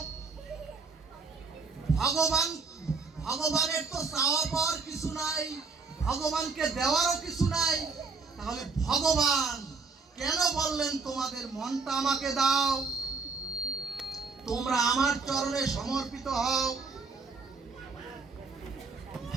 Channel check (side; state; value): left; quieter; 4.4 dB